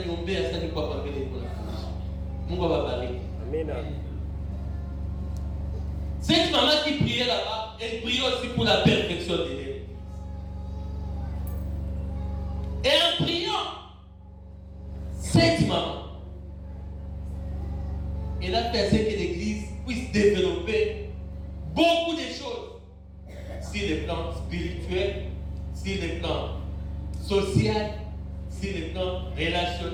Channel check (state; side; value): identical; both; correlation 1.00